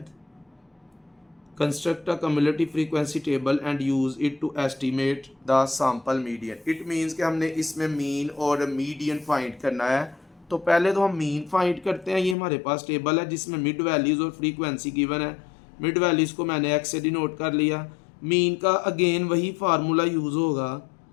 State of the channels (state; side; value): drops out; right; at 12.4 s